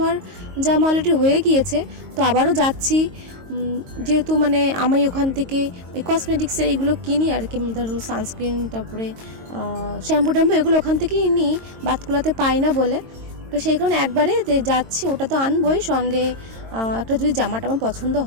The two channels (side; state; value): left; late; 22 ms